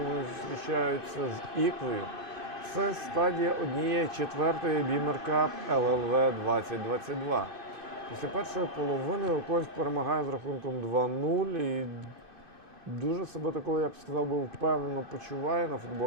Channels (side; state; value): left; late; 2.6 ms